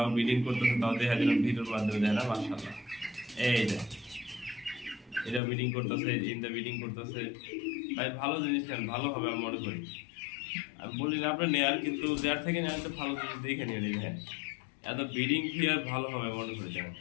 ব্রিডিং করতেছে, তাও দেখা দিল ভিডিওর মাধ্যমে দেয় না মাশাআল্লাহ। এই যে এটা ব্রিডিং করতেছে, ইনটা ব্রিডিং করতেছে ভাই, ভালো জিনিস নেন, ভালো হবে আমি মনে করি। আমি বলি না আপনার নেয়ার, কিন্তু যার থেকে নেওয়ার তো ভালো জিনিস দেখে নিয়ে নিন। হ্যাঁ, এত ব্রিডিং পেয়ার ভালো হবে মনে করি, দেখেন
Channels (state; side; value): drops out; right; at 5.4 s